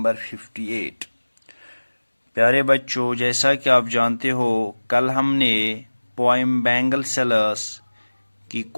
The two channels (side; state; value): both; inverted; correlation -1.00